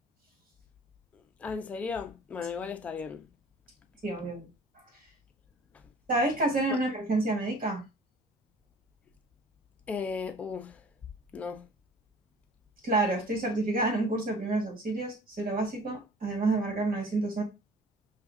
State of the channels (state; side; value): normal; both; correlation 0.48